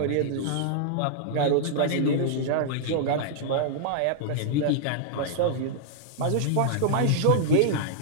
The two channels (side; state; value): both; different; correlation -0.01